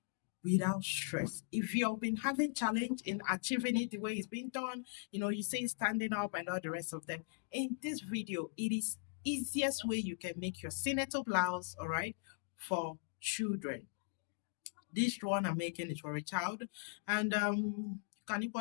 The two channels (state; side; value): silent; right; digital silence